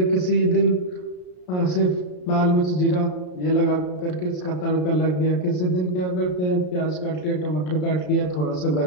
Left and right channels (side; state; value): right; late; 33 ms